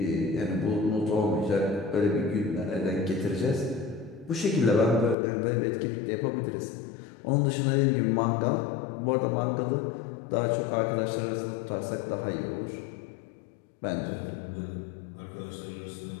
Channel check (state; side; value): drops out; right; at 5.2 s